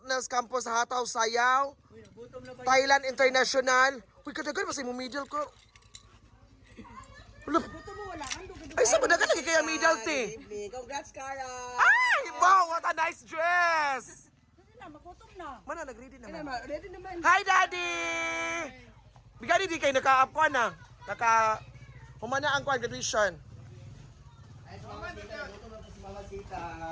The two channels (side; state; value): both; identical; correlation 1.00